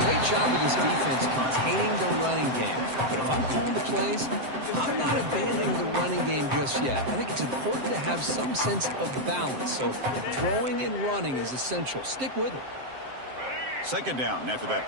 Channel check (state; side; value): late; left; 7.7 ms